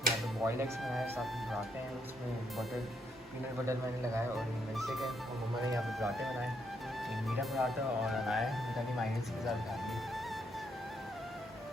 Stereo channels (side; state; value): both; normal; correlation 0.76